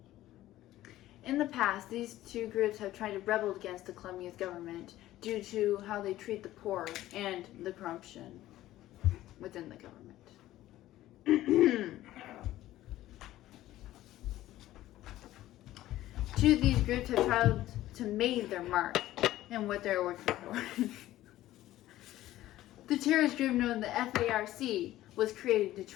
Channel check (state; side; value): quieter; right; 14.8 dB